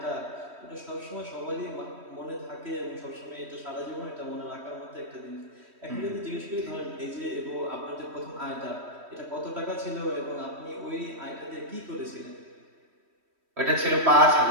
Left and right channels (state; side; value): late; left; 3.1 ms